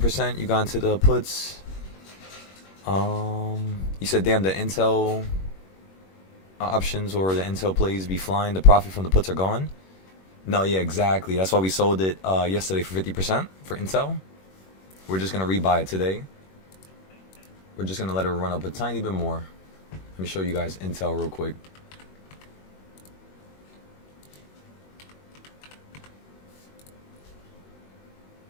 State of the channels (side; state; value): right; late; 21 ms